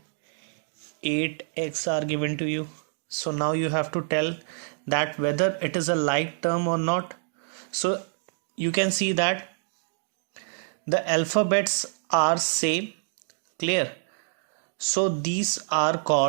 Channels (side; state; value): left; silent; digital silence